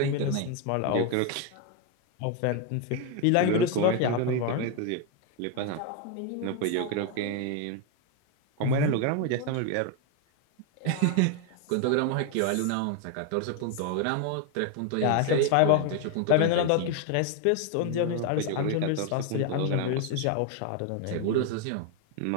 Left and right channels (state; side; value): different; both; correlation 0.01